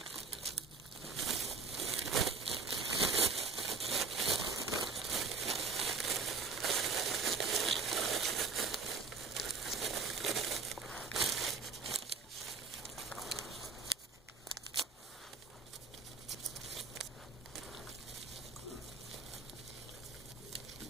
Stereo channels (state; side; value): quieter; left; 4.8 dB